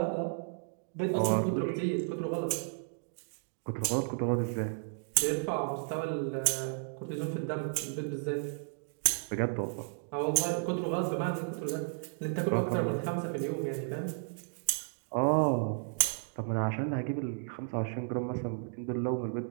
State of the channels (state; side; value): silent; left; 56 dB below the other